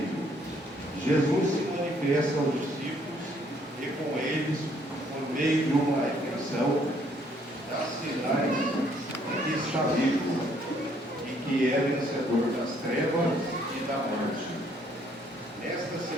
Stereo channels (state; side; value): normal; both; correlation 0.66